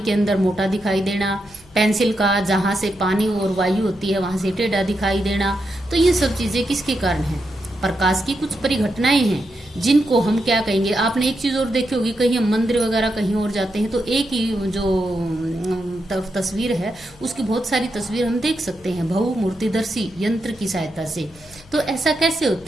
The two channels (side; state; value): left; noise; hum, 25 dB below the sound